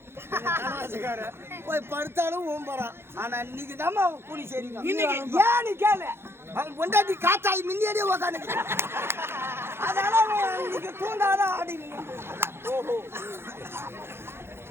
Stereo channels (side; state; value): left; late; 0.12 ms